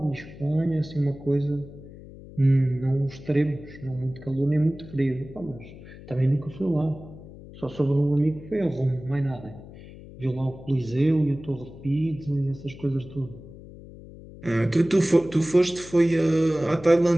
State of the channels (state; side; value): noise; left; hum, 17 dB below the sound